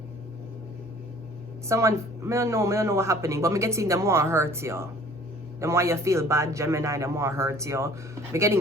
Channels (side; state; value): both; normal; correlation 0.52